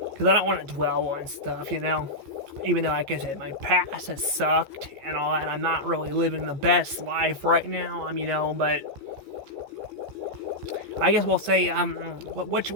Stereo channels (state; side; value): late; left; 14 ms